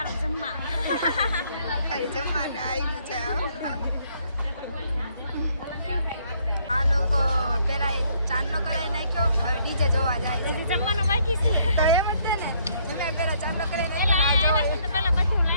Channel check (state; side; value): inverted; both; correlation -0.67